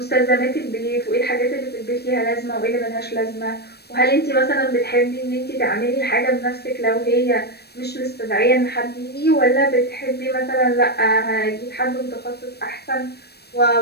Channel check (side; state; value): right; late; 0.47 ms